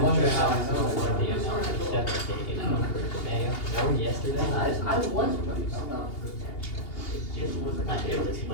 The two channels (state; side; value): late; right; 2.8 ms